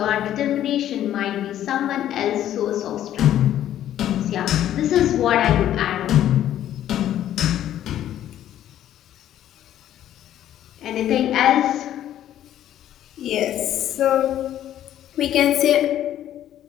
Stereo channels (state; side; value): quieter; right; 11.7 dB